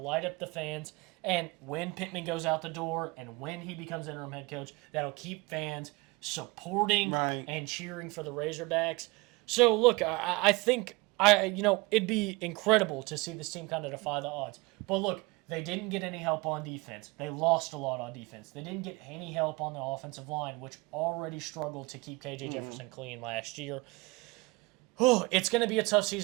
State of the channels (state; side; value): quieter; left; 25.0 dB